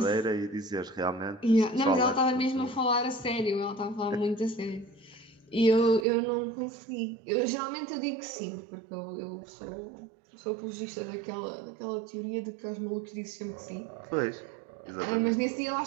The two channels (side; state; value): left; drops out; at 6.1 s